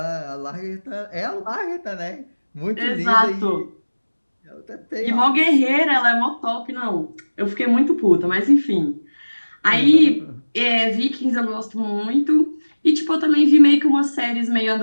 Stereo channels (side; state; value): both; inverted; correlation -1.00